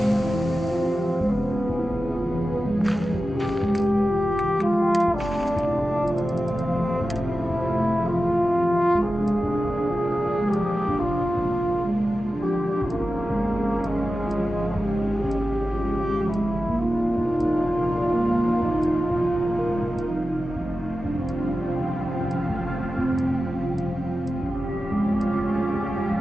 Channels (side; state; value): both; normal; correlation 0.93